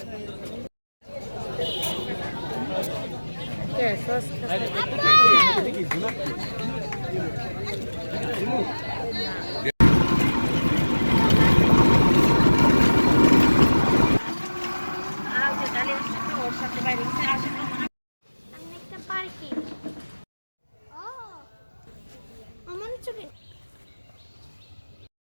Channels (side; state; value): both; inverted; correlation -1.00